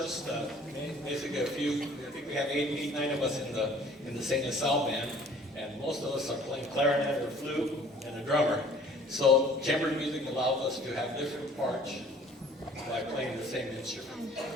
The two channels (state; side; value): normal; both; correlation 0.53